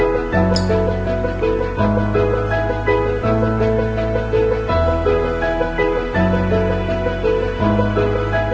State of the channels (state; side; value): identical; both; correlation 1.00